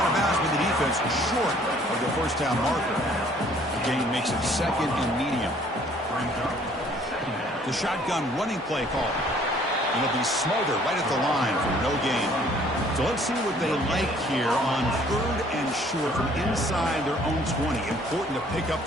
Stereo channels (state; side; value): normal; both; correlation 0.58